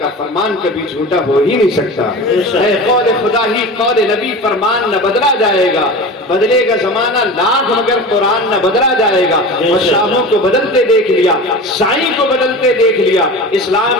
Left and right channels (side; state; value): both; normal; correlation 0.32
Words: فرمان کبھی جھوٹا ہو ہی نہیں سکتا۔ اے قول خدا ہی قول نبی، فرمان نہ بدلا جائے گا، بدلے گا زمانہ لاکھ مگر قرآن نہ بدلا جائے گا۔ اور شاہوں کو بدلتے دیکھ لیا، سائیں کو بدلتے دیکھ لیا،